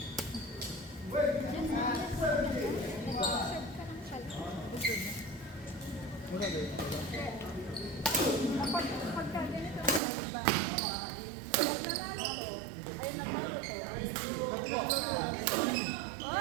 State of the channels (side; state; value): left; drops out; at 10.0 s